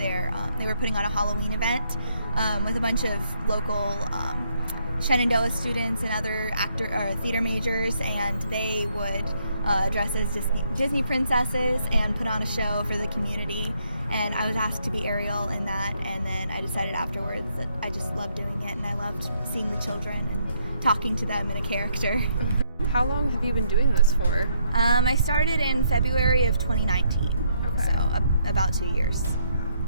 they were putting on a Halloween event with a bunch of local Shenandoah students and other theater majors, and they would dress as Disney princesses and put on a show for the community. And I was asked to be Ariel in that, and then I decided afterwards that I just loved doing it, and I loved seeing the children and talking to them in a character. How long have you been doing this for? I started in February of 2019, okay. So about 2 years.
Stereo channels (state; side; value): inverted; both; correlation -0.73